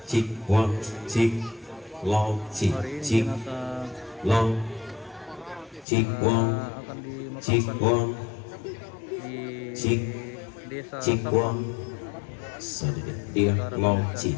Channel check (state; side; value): drops out; right; at 5.9 s